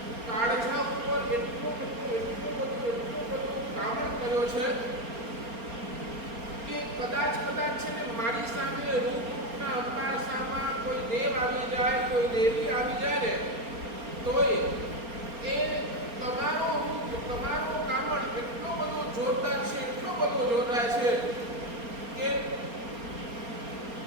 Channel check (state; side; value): late; left; 4.3 ms